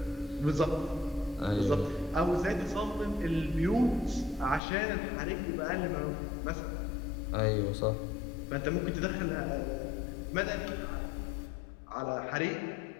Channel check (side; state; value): right; drops out; at 4.6 s